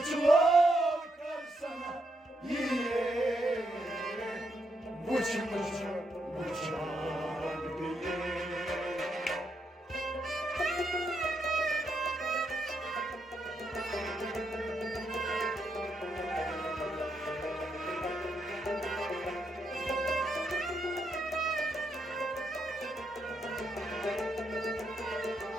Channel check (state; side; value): normal; both; correlation 0.79